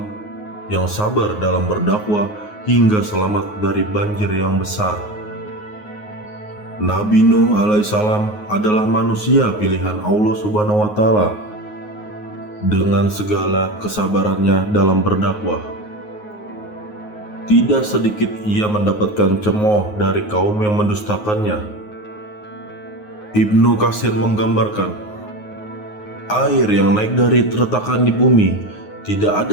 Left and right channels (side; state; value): right; late; 9.5 ms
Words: yang sabar dalam berdakwah hingga selamat dari banjir yang besar. Nabi Nuh alaihissalam adalah manusia pilihan Allah Subhanahu wa Ta'ala. Dengan segala kesabarannya dalam berdakwah, tidak sedikit ia mendapatkan cemooh dari kaum yang mendustakannya. Ibnu Katsir menggambarkan, air yang naik dari retakan di bumi, tidak